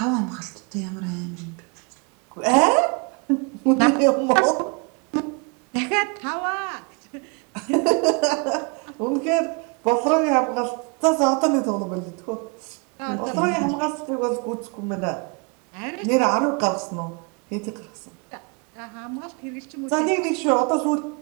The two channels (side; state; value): left; quieter; 33.9 dB